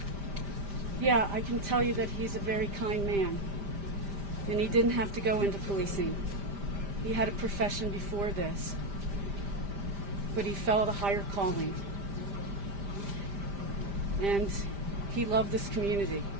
Yeah, I can tell you that he's a very kind man, and he didn't have to go into policing. He had a profession before this, but he felt a higher calling, and he loved this community,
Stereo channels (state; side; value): late; left; 5.0 ms